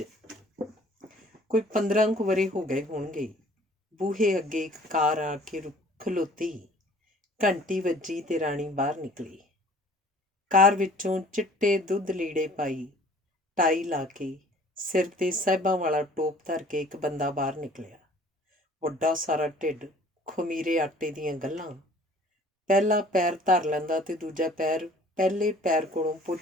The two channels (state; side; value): normal; both; correlation 0.52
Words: ਕੋਈ 15 ਕੁ ਵਰ੍ਹੇ ਹੋ ਗਏ ਹੋਣਗੇ। ਬੂਹੇ ਅੱਗੇ ਇੱਕ ਕਾਰ ਆ ਕੇ ਖਲੋਤੀ। ਘੰਟੀ ਵੱਜੀ ਤੇ ਰਾਣੀ ਬਾਹਰ ਨਿਕਲੀ। ਕਾਰ ਵਿੱਚੋਂ ਚਿੱਟੇ ਦੁੱਧ ਲੀੜੇ ਪਾਈ, ਟਾਈ ਲਾ ਕੇ, ਸਿਰ 'ਤੇ ਸਾਹਿਬਾਂ ਵਾਲਾ ਟੋਪ ਧਰ ਕੇ ਇੱਕ ਬੰਦਾ ਬਾਹਰ ਨਿਕਲਿਆ। ਵੱਡਾ ਸਾਰਾ ਢਿੱਡ, ਖਮੀਰੇ ਆਟੇ ਦੀਆਂ ਗੱਲਾਂ। ਪਹਿਲਾ ਪੈਰ ਧਰ ਲੈਂਦਾ ਤੇ ਦੂਜਾ ਪੈਰ ਪਹਿਲੇ ਪੈਰ ਕੋਲੋਂ